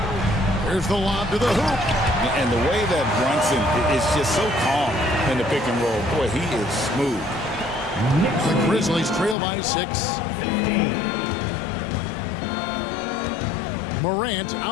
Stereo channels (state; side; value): drops out; right; at 9.3 s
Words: Here's the lob to the hoop. And the way that Brunson is just so calm in the pick and roll, boy, he is smooth. The Grizzlies trail by 6. 15. Morant